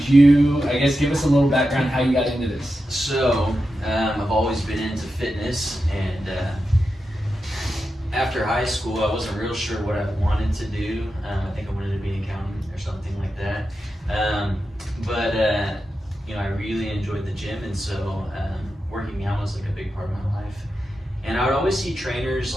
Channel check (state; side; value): normal; both; correlation 0.90